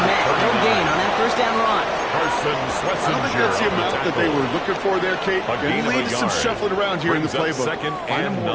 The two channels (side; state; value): both; identical; correlation 1.00